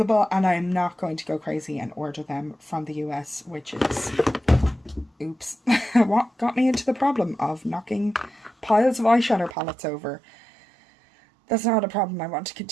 and I'm not going to go crazy and order them from the US, which is, oops, what got me into the problem of knocking piles of eyeshadow palettes over. That's not a problem I want to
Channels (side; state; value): left; drops out; at 9.6 s